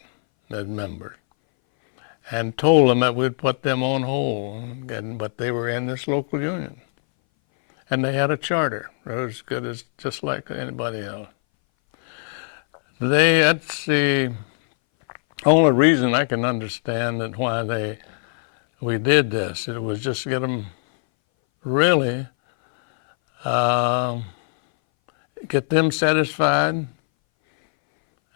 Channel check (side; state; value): right; silent; 61 dB below the other